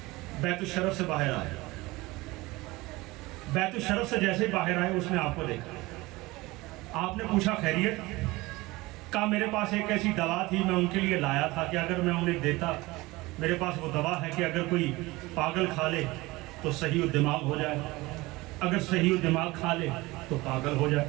بیت الشرف سے باہر آئے، بیت الشرف سے جیسے باہر آئے اس نے آپ کو دیکھا، آپ نے پوچھا خیریت؟ کہا میرے پاس ایک ایسی دوا تھی، میں ان کے لیے لایا تھا کہ اگر میں انہیں دیتا، میرے پاس وہ دوا ہے کہ اگر کوئی پاگل کھا لے تو صحیح الدماغ ہو جائے، اگر صحیح الدماغ کھا لے تو پاگل ہو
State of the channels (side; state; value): left; quieter; 21.1 dB